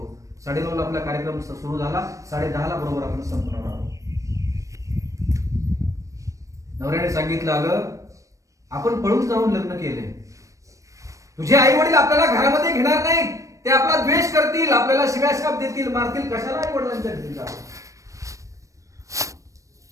9:30 आपला कार्यक्रम सुरू झाला, 10:30 बरोबर आपण संपणार आहोत. नवऱ्याने सांगितलं, अगं आपण पळून जाऊन लग्न केले. तुझे आई वडील आपल्याला घरामध्ये घेणार नाही, ते आपला द्वेष करतील, आपल्याला शिव्याशाप देतील, मारतील. कशाला आई वडिलांच्या घरी जावं?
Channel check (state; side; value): late; left; 0.16 ms